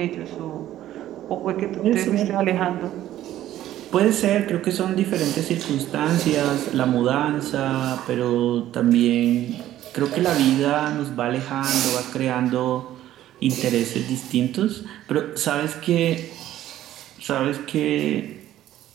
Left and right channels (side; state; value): left; quieter; 13.1 dB